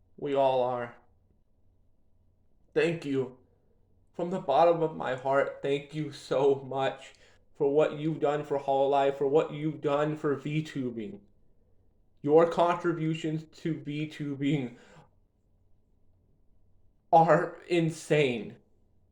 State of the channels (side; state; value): both; identical; correlation 1.00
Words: We all are. Thank you. From the bottom of my heart, thank you so much for what you've done for Hololive, for what you've done for Vtubing. Your contributions to Vtubing are insane.